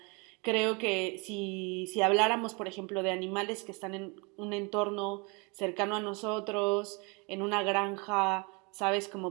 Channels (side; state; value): left; quieter; 30.6 dB